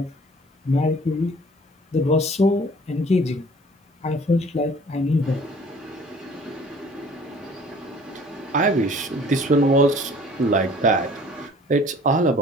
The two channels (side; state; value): both; normal; correlation 0.51